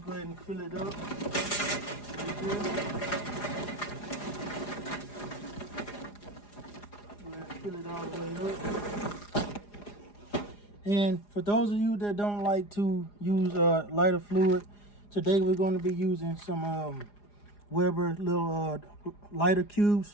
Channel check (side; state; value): right; late; 4.9 ms